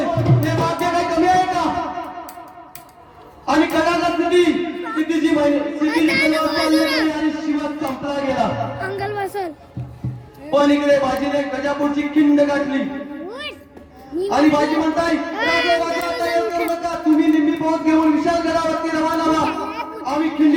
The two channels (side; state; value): both; identical; correlation 1.00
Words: हे वाक्य काही कमी आहे का? आणि कदाचा स्थितीची आणि शिवा संपला गेला. अंगल बसल पण इकडे बाजीने गजापूरची खिंड गाठली आणि बाजी म्हणताय राजे राजा तयार करू नका तुम्ही निम्मी पोहोच घेऊन विशालगडावरती रवाना व्हा आम्ही